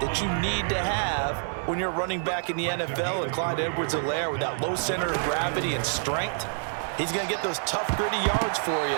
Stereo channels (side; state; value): left; silent; 60 dB below the other